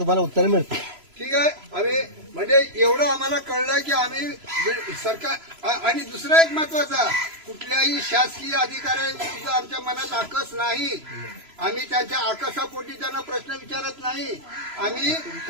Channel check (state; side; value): late; left; 3.0 ms